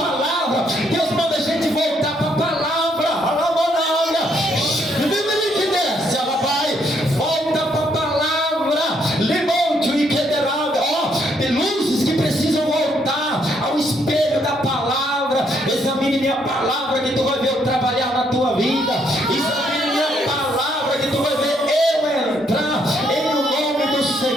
Deus manda a gente voltar para a palavra. Volta para a palavra. Lemonte, examine minha palavra que tu vai ver eu trabalhar na tua vida. Examine minha palavra que tu vai ver eu entrar em o nome do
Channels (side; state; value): both; normal; correlation 0.72